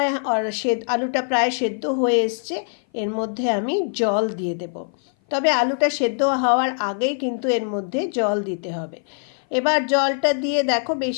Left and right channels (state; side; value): silent; right; 57 dB below the other